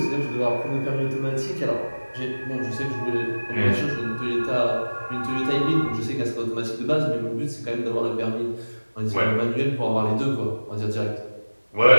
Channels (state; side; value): inverted; both; correlation -1.00